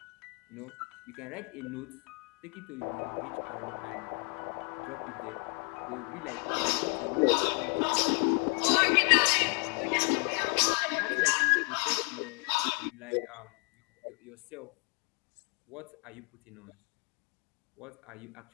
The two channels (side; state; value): right; quieter; 37.8 dB